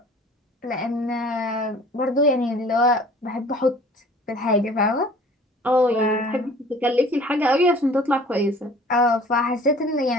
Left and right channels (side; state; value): both; normal; correlation 0.49